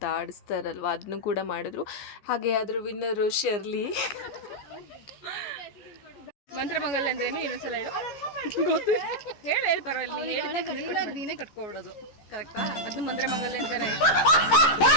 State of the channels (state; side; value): late; right; 14 ms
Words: ಆಡಿಸ್ತಾರಲ್ವ, ಅದನ್ನು ಕೂಡ ಮಾಡಿದ್ರು. ಹಾಗೆ ಅದ್ರ ವಿನ್ನರು ಶರ್ಲಿ. ಮಂತ್ರಮಂಗಲ್ ಅಂದ್ರೇನು ಇನ್ನೊಂದ್ಸಲ ಹೇಳು. ಗೊತ್ತು, ಹೇಳಿ ಪರವಾಗಿಲ್ಲ. ನೀನೇ ಕಟ್ಕೊಬಿಡೋದು ಕರೆಕ್ಟಾ? ಅದು ಮಂತ್ರಮಂಗಲ್ ಅಂತಾರೆ.